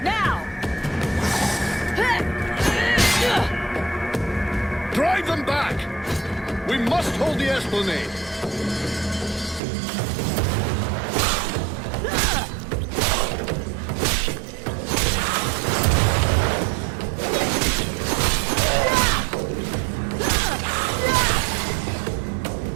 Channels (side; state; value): left; drops out; at 9.6 s